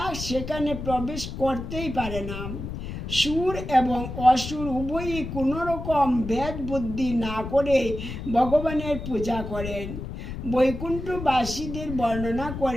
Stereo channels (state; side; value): noise; left; rumble, 7 dB below the sound